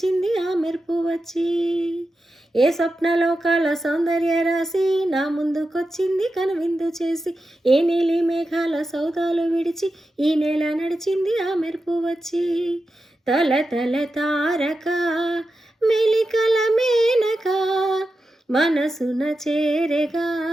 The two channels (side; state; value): both; normal; correlation 0.90